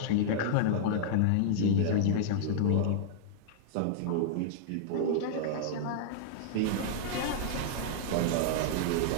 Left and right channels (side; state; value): both; different; correlation -0.02